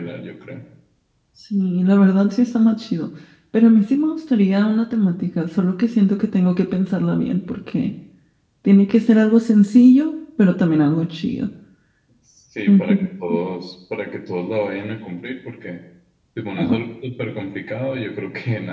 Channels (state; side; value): identical; both; correlation 1.00